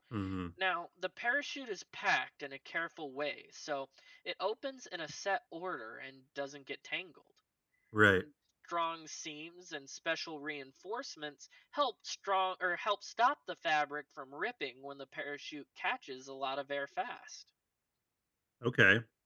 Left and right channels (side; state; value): both; identical; correlation 1.00